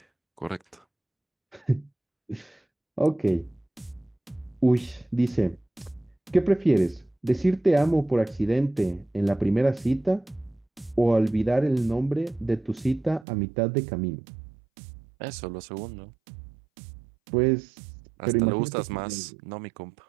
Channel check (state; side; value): drops out; left; at 13.2 s